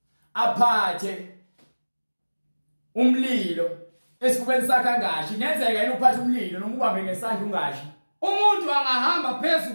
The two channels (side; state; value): both; inverted; correlation -1.00